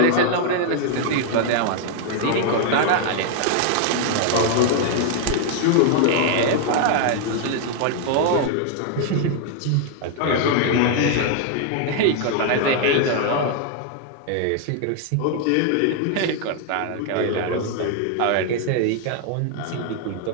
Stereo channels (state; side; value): different; both; correlation 0.00